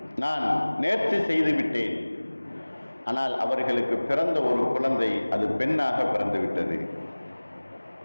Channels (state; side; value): inverted; both; correlation -1.00